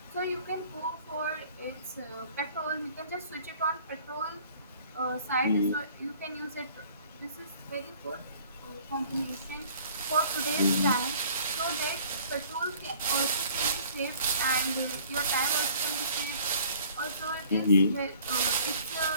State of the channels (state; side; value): inverted; both; correlation -0.52